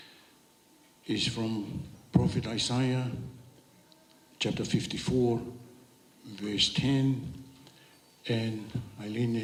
is from Prophet Isaiah, chapter 54, verse 10. And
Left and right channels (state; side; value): identical; both; correlation 1.00